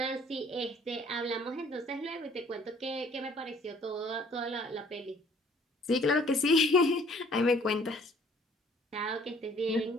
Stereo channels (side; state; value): both; normal; correlation 0.57